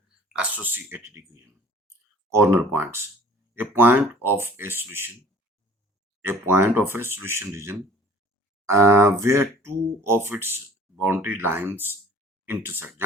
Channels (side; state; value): both; normal; correlation 0.50